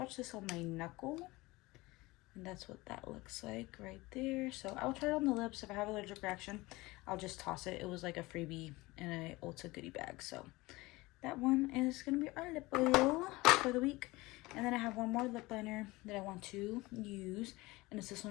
this on my knuckle, and that's what that looks like right there. So I'll try it on the lips. If I have allergic reaction, I'll just toss it. It was like a freebie in a Ulta goodie bag. So that one is gonna be our lip oil for the week. And then I have one more lip liner that I want to use, and it's this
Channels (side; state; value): right; quieter; 21.3 dB